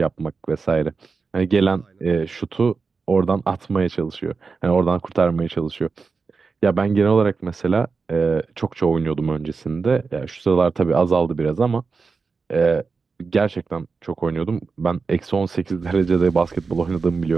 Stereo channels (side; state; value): left; quieter; 4.7 dB